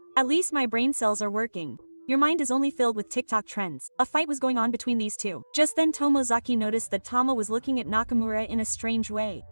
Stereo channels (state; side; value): inverted; both; correlation -1.00